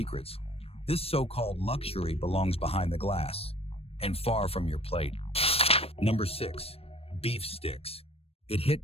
this so-called luxury belongs behind the glass and far from your plate. Number 6, beef sticks. It hit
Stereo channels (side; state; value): right; late; 0.28 ms